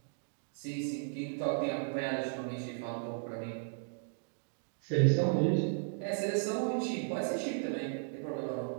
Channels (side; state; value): left; silent; digital silence